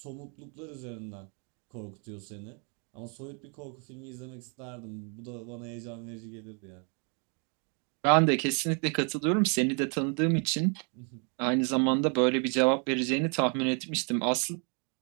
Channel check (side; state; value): left; quieter; 37.7 dB